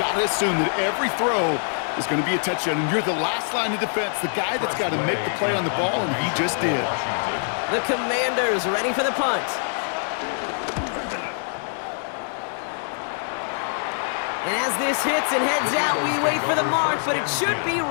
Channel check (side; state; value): right; silent; 63 dB below the other